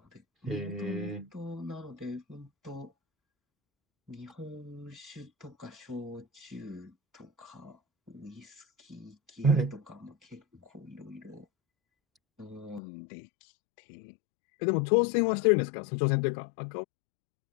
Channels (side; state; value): right; drops out; at 12.8 s